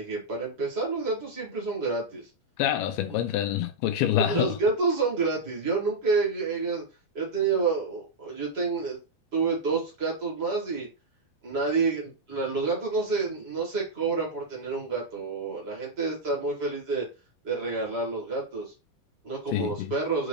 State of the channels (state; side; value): normal; both; correlation -0.05